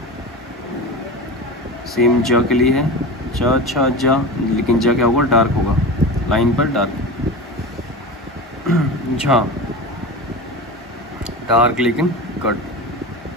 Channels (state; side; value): normal; both; correlation 0.28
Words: सेम ज के लिए है, च, छ, जा, लेकिन ज क्या होगा, डार्क होगा, लाइन पर डार्क। झा, डार्क लेकिन कट।